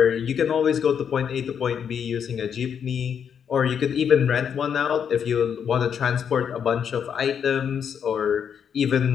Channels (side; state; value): right; quieter; 7.7 dB